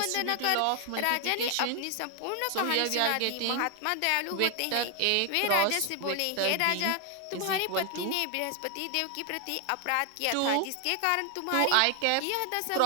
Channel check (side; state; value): both; different; correlation 0.00